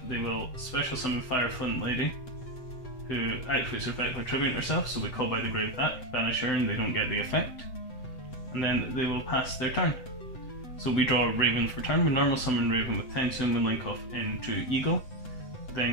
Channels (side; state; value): right; late; 7.9 ms